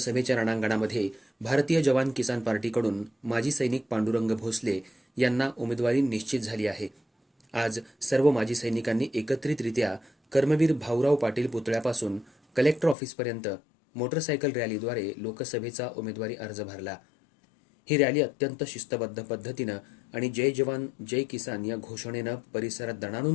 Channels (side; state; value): right; drops out; at 13.0 s